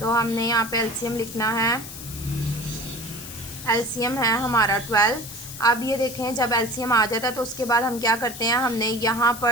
तो हमने यहाँ पे एलसीएम लिखना है, एलसीएम है हमारा 12। अब ये देखें जब एलसीएम आ जाता है तो उसके बाद हम क्या करते हैं, हमने यहाँ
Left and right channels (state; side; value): noise; left; hiss, 12 dB below the sound